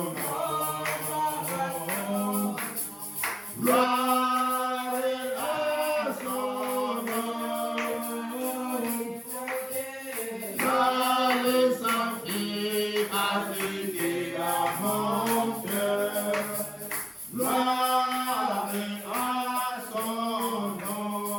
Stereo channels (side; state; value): both; identical; correlation 1.00